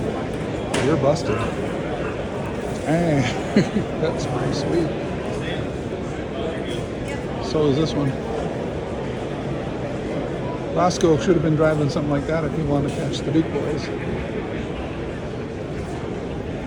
You're busted. Hey, that's pretty sweet. So is this one. Roscoe should have been driving something like that if he wanted to catch the Duke boys.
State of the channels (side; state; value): both; identical; correlation 1.00